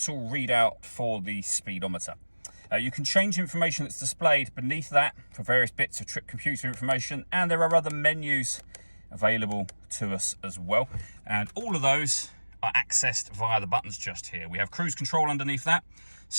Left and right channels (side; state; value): both; inverted; correlation -1.00